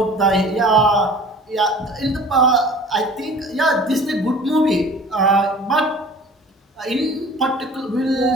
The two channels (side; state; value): both; normal; correlation 0.45